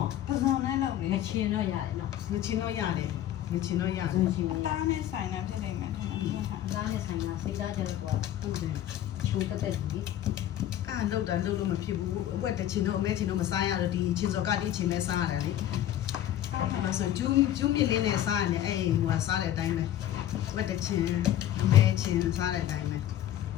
ပစုံနဲ့လုပ်နေချင်တော့ရတယ်နော်ချင်တော့ရတယ်အသားနဲ့ဆိုင်တာဖြစ်နေမှထင်တယ်အသားနဲ့ဆိုင်တာစိတ်သားကြတော့ဟုတ်တယ်ချိုးတက်ပြီလုတ်လို့မဖြစ်ဘူးအဝက်တချင်တော့အမဲချင်တော့မစားရတော့ဒီချင်းစော်ကတိချင်နဲ့စားရတယ်လေအဲ့ဆိုကျူးမြင့်လေးနဲ့စားရတယ်အဲ့ဟိုစားတဲ့အတိုင်းပဲဝက်တချင်အမဲချင်စားတဲ့အတိုင်းပဲ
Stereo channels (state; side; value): quieter; right; 12.0 dB